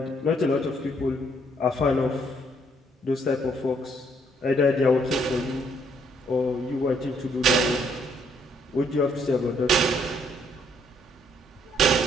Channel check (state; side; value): normal; both; correlation 0.68